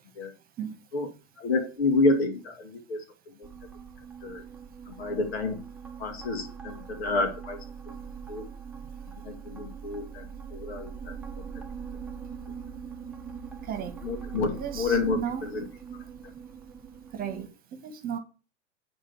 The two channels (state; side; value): normal; both; correlation 0.14